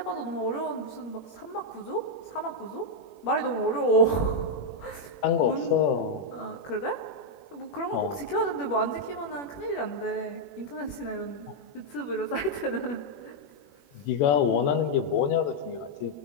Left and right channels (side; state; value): right; late; 21 ms